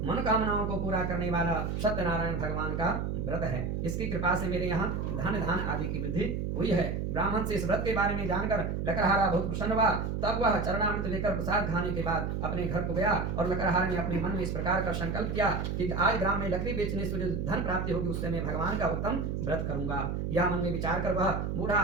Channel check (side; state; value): right; noise; hum, 2 dB below the sound